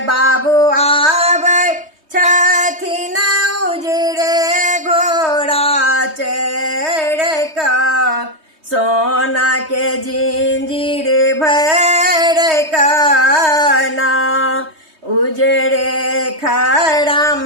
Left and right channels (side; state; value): left; late; 3.2 ms